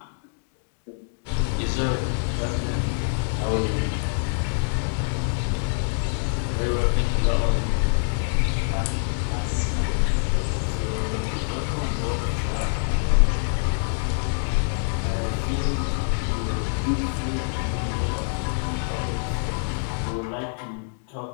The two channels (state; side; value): silent; right; digital silence